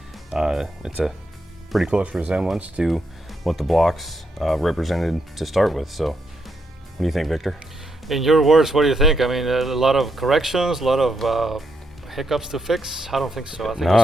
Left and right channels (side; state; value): both; normal; correlation 0.80